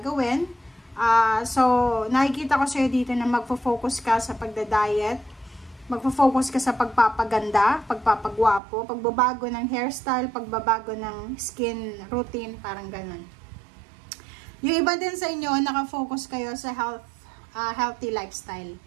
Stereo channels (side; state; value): left; drops out; at 8.6 s